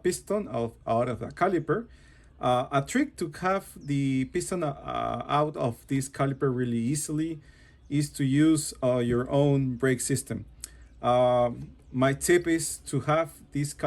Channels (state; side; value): identical; both; correlation 1.00